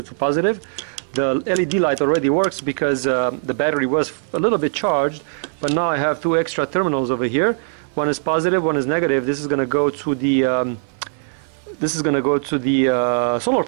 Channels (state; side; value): silent; left; 56 dB below the other